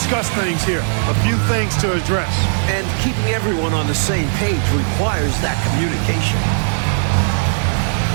things here. A few things to address. And keeping everyone on the same page requires that communication.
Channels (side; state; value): left; silent; 57 dB below the other